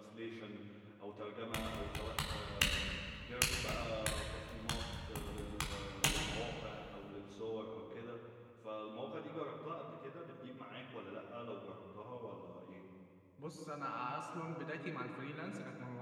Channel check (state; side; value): identical; both; correlation 1.00